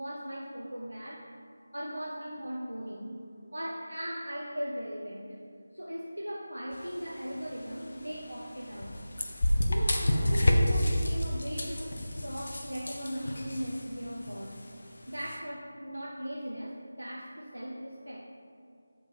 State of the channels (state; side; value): inverted; both; correlation -0.96